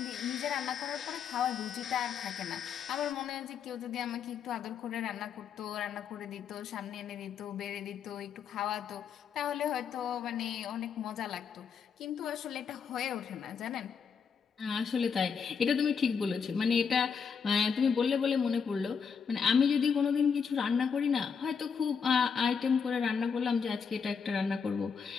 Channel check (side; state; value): right; quieter; 6.4 dB